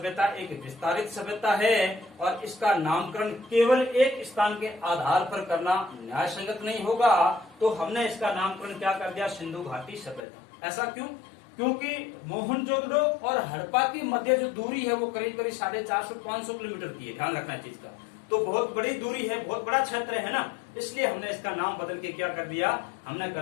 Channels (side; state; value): right; drops out; at 10.2 s